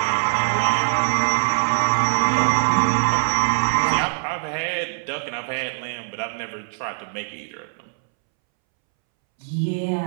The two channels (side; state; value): left; silent; 64 dB below the other